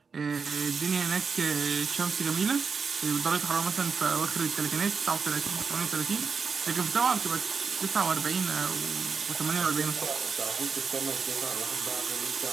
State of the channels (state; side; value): quieter; left; 5.4 dB